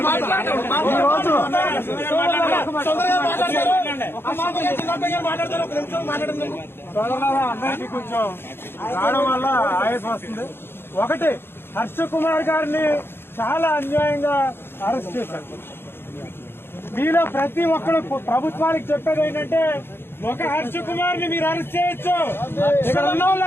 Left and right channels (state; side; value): late; right; 0.11 ms